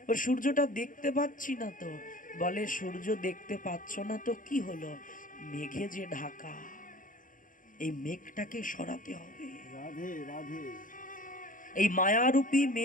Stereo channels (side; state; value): right; late; 0.39 ms